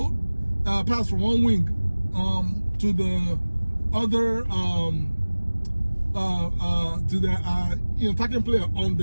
pass from one wing to the other to the you know, attacking player on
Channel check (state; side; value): inverted; both; correlation -1.00